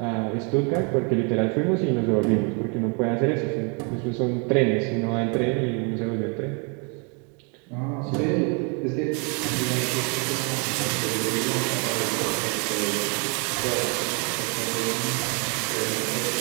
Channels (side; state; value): left; quieter; 33.5 dB